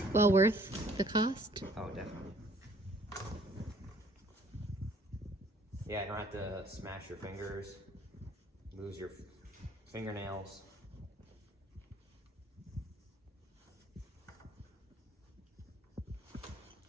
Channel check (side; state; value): both; normal; correlation 0.58